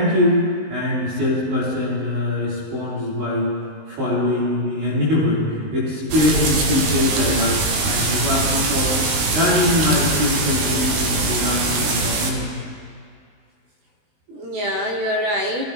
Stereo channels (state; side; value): late; left; 19 ms